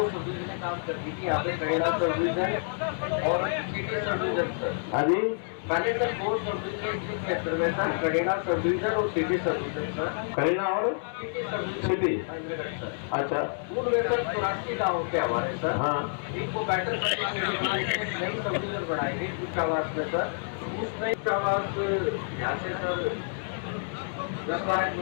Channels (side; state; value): right; silent; 59 dB below the other